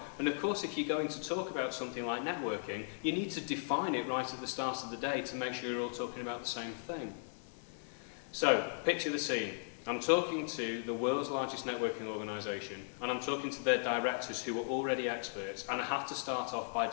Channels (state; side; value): silent; right; digital silence